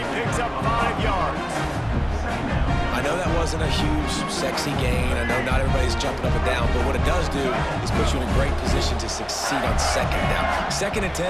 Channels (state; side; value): identical; both; correlation 1.00